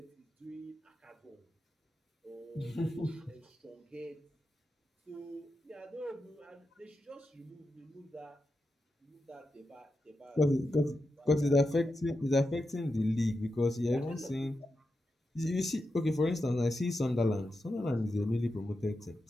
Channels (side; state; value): both; normal; correlation 0.89